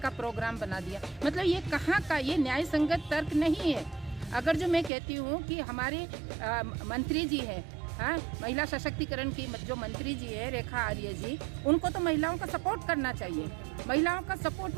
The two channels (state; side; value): drops out; left; at 4.9 s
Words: प्रोग्राम बना दिया। मतलब ये कहाँ का, ये न्याय संगत तर्क नहीं है। अगर जो मैं कहती हूँ कि हमारे मंत्री जी हैं, हाँ, महिला सशक्तिकरण की जो मंत्री जी है रेखा आर्य जी, उनको तो महिलाओं का सपोर्ट करना चाहिए। महिलाओं का सपोर्ट